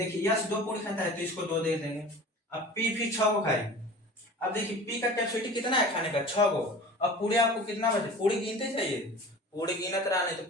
यस 2 पूरी खाता है तो इसको 2 दे देंगे। अब पी फिर 6 गो खाई, अब देखिए पी का कैपेसिटी कितना है खाने का 6 गो, अब पूरी आपको कितना बचे पूरी गिनते चाहिए, पूरी गिनत रहा नहीं तो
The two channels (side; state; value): both; normal; correlation 0.40